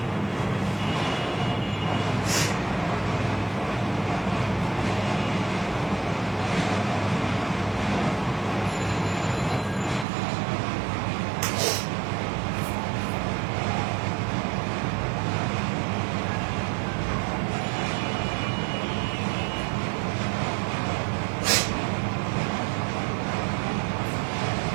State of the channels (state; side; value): drops out; left; at 10.1 s